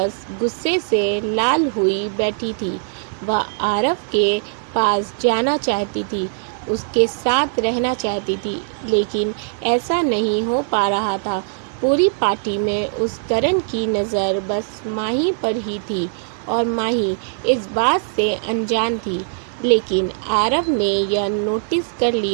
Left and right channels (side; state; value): left; silent; digital silence